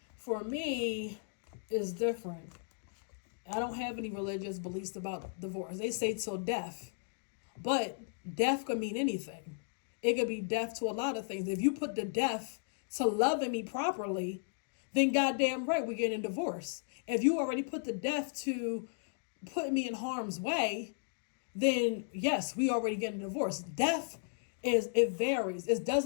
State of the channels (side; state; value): right; silent; digital silence